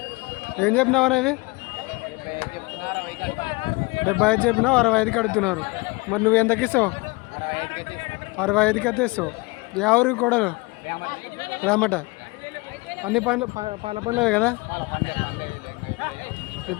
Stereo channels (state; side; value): quieter; right; 25.5 dB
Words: ఏం చెప్పినావు అనేవి? 75 చెప్పినావు, 65కి అడుగుతున్నారు. మరి నువ్వు ఎంతకి ఇస్తావు? 65కి అయితే ఇస్తావు. ఎవరు కోడలు? రామట. అన్ని పనులు పాల పనులే కదా.